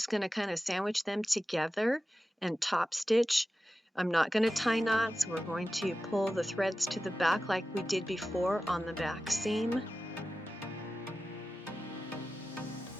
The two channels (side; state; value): both; normal; correlation 0.94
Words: going to kind of sandwich them together and top stitch. I'm not going to tie knots. We're going to pull the threads to the back like we did before on the back seam.